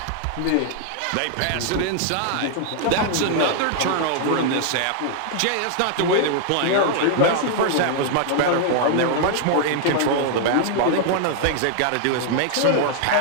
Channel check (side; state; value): both; different; correlation 0.00